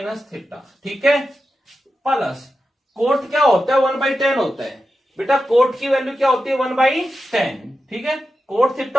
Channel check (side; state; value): both; normal; correlation 0.90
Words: theta. ठीक है, प्लस कोट क्या होता है 1/10 होता है बेटा, कोट की वैल्यू क्या होती है 1/10। ठीक है, कोट